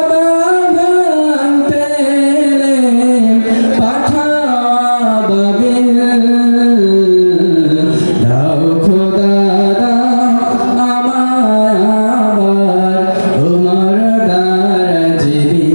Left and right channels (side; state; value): both; inverted; correlation -1.00